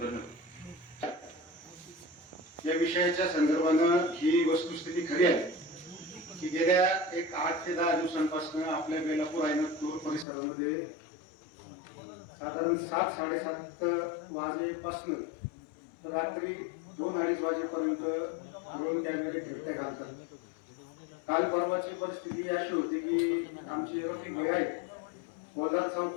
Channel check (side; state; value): right; drops out; at 10.2 s